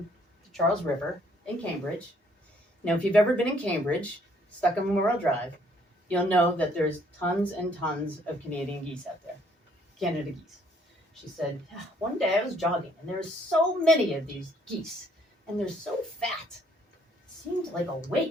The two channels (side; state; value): both; normal; correlation 0.65